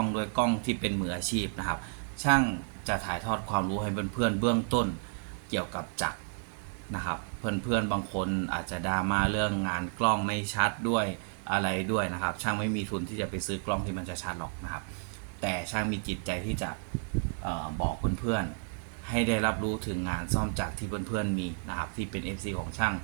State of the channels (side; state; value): left; silent; 56 dB below the other